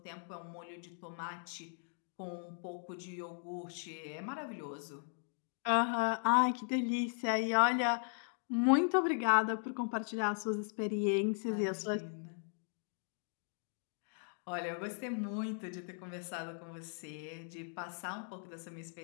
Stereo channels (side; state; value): right; silent; 53 dB below the other